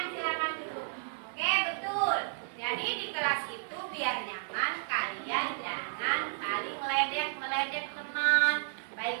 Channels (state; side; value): silent; left; 56 dB below the other